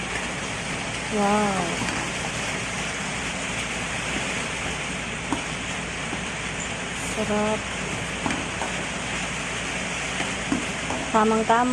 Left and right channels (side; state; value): both; identical; correlation 1.00